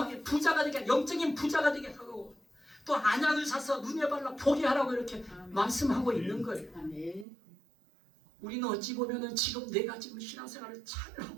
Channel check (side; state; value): left; drops out; at 7.2 s